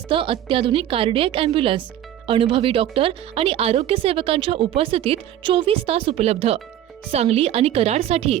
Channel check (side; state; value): left; quieter; 11.7 dB